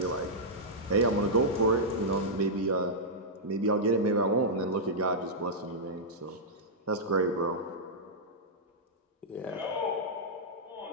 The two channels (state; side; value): normal; both; correlation -0.10